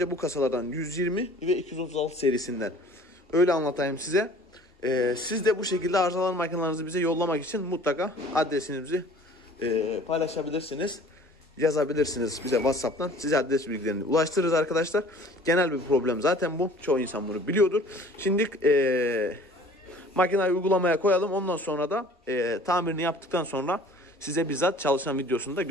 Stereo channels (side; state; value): both; normal; correlation 0.49